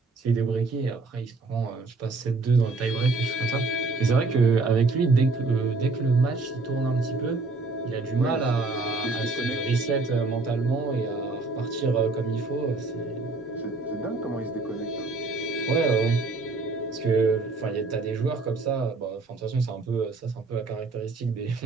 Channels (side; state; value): left; quieter; 3.6 dB